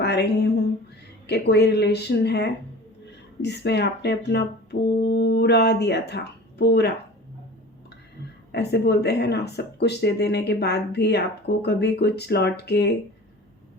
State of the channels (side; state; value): both; normal; correlation 0.40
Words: रही हूँ कि कोई रिलेशन है जिसमें आपने अपना पूरा दिया था, पूरा। ऐसे बोलते हैं ना, सब कुछ दे देने के बाद भी आपको कभी कुछ लौट के